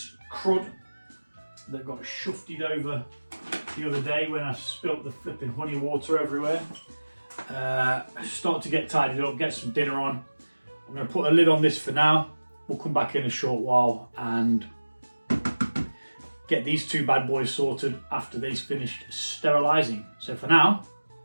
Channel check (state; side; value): inverted; both; correlation -1.00